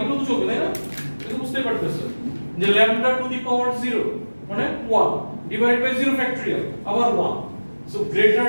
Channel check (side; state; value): both; inverted; correlation -1.00